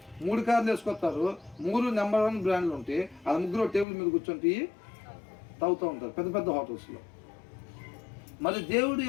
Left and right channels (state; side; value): drops out; right; at 3.9 s